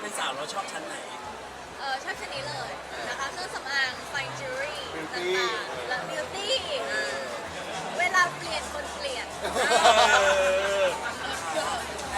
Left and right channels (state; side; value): identical; both; correlation 1.00